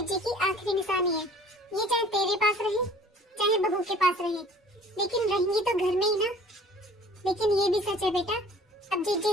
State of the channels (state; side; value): normal; both; correlation 0.50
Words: की आखिरी निशानी है। ये चाहे तेरे पास रहे चाहे बहू के पास रहे, लेकिन रहेंगी तो घर में ही ना। लेकिन ये भी सच है बेटा, अब